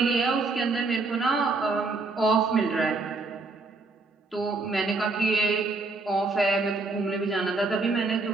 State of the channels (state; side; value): quieter; left; 3.6 dB